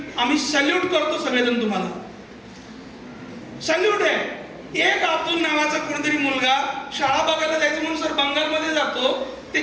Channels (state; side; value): identical; both; correlation 1.00